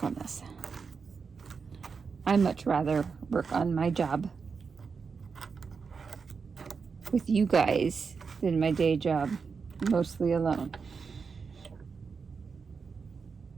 on this. I much rather work on my job with you guys than my day job mostly alone.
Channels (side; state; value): left; quieter; 5.4 dB